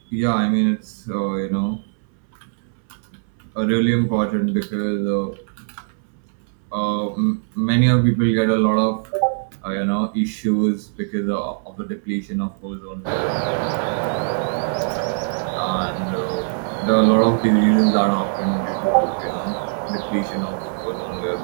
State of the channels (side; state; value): left; silent; 65 dB below the other